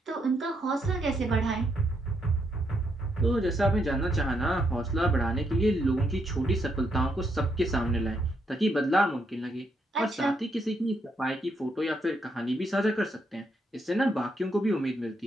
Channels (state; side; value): normal; both; correlation 0.77